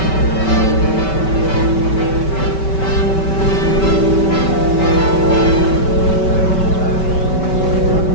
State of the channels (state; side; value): late; right; 5.2 ms